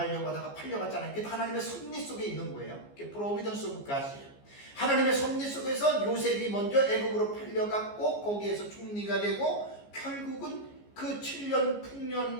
하다가 팔려갔잖아요. 그게 하나님의 섭리 속에 있는 거예요. 그게 프로비던스 오브 갓이에요. 하나님의 섭리 속에서 요셉이 먼저 애굽으로 팔려갔고 거기에서 총리가 되고 결국은 그 7년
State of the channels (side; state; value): right; late; 14 ms